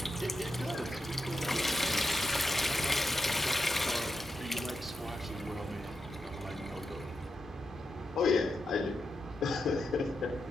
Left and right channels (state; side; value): normal; both; correlation 0.86